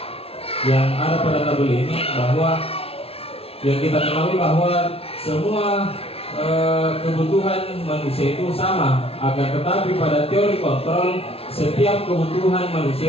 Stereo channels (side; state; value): right; late; 0.28 ms